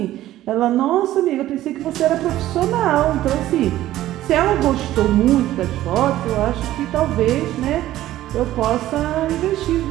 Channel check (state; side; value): quieter; left; 14.3 dB